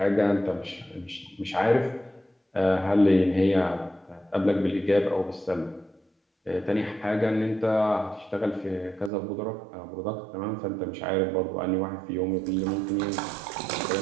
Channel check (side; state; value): left; drops out; at 9.1 s